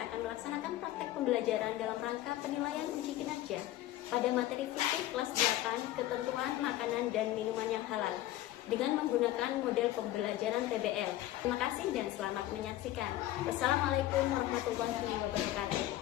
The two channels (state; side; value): quieter; right; 14.7 dB